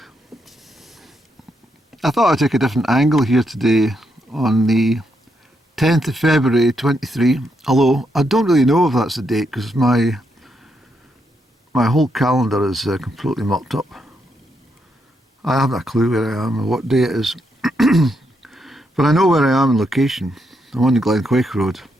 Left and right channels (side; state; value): both; normal; correlation 0.79